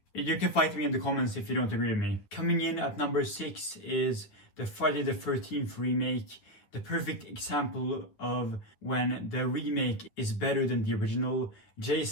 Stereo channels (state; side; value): late; right; 9.8 ms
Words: You can fight me in the comments if you don't agree with me. Coming in at number 6 is the Friday the 13th remake. The perfect example of when the remake is better than the original.